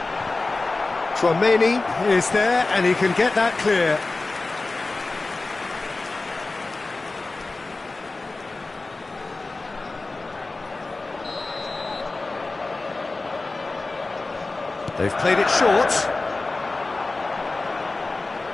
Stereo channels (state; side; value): quieter; right; 3.4 dB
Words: Tchouameni is there, and he can get that clear. They've played it short.